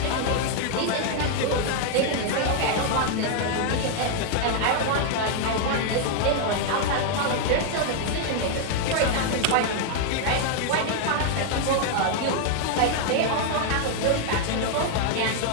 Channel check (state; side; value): different; both; correlation 0.00